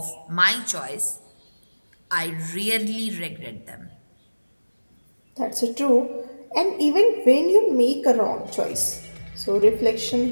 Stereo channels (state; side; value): inverted; both; correlation -1.00